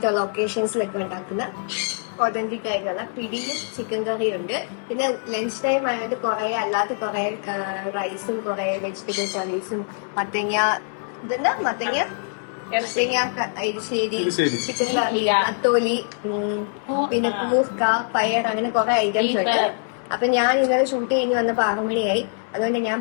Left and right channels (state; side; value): silent; right; 63 dB below the other